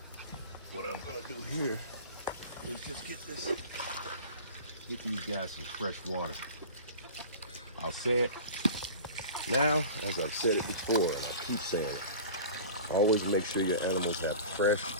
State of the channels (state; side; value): inverted; both; correlation -0.37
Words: What I'm gonna do here is just get these guys some fresh water. I'll say it now, as I've said it before, and I keep saying it. Always make sure your animals have fresh